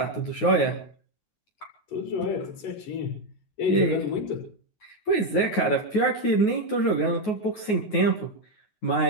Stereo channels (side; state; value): right; late; 9.4 ms